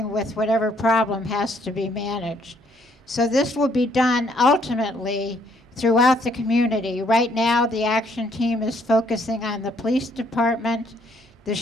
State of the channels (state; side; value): normal; both; correlation 0.67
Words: with whatever problem has to be managed. So this will be done ultimately throughout the community. Right now, the action team is focusing on the police department, the